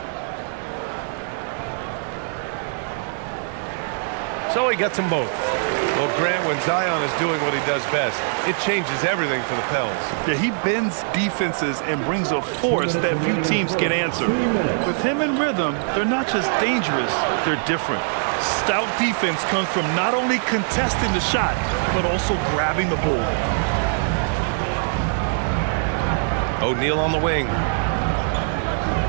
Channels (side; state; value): left; silent; digital silence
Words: So he gets them both. Well, Grant, when Zion is doing what he does best, it changes everything for the Pels. Yeah, he bends defenses and brings a force that few teams can answer. With him in rhythm, they're not just dangerous, they're different. Stout defense comes from not only contesting the shot, but also grabbing the board. O'Neal on the wing.